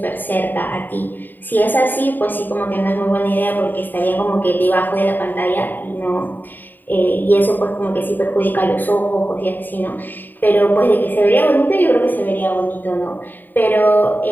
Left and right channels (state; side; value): late; right; 0.090 ms